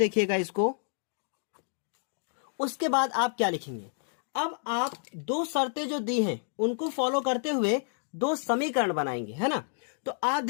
इसको। उसके बाद आप क्या लिखेंगे? अब आप 2 शर्तें जो दी हैं उनको फॉलो करते हुए 2 समीकरण बनाएंगे, है ना। तो आप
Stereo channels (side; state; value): right; silent; 58 dB below the other